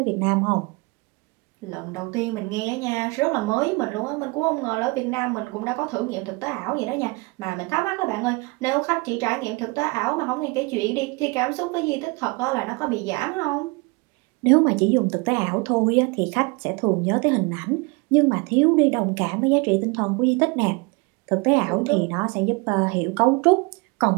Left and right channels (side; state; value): left; quieter; 27.5 dB